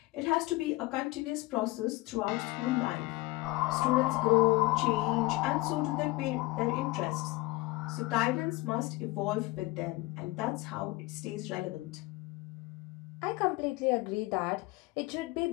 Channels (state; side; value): quieter; right; 21.0 dB